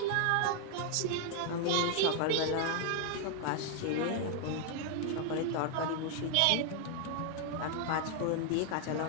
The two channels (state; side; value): different; both; correlation 0.00